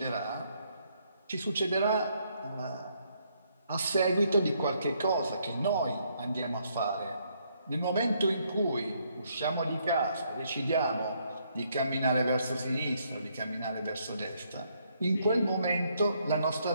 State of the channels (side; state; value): both; inverted; correlation -0.72